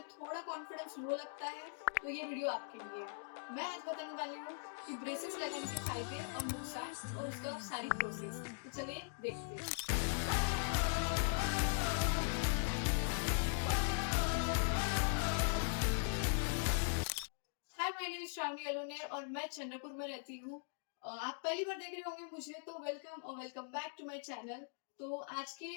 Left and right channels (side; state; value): right; silent; digital silence